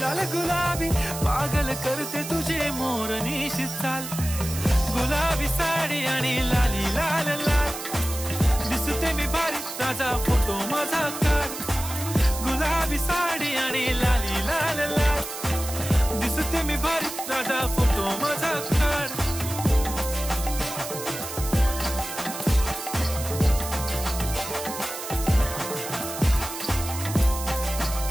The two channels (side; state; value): right; noise; hiss, 8 dB below the sound